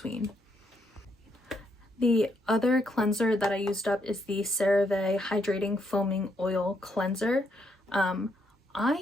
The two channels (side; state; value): both; normal; correlation 0.76